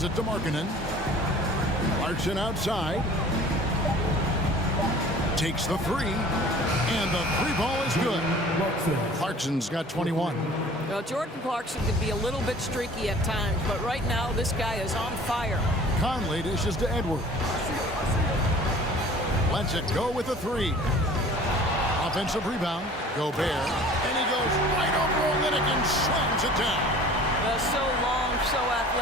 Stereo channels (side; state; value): both; normal; correlation 0.47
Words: it to Markkanen. Clarkson outside. Takes the 3. And the 3 ball is good. Clarkson's got 21. Well, Jordan Clarkson can be a little bit streaky at times, but right now this guy is on fire. Conley dishes to Edwards. Lets it go with the 3. Offensive rebound. Gobert. And he goes right over Olynyk and slams it down. So long, so